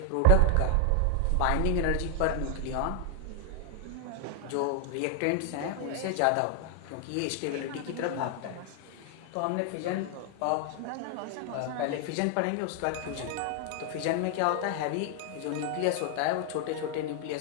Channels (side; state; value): both; different; correlation 0.00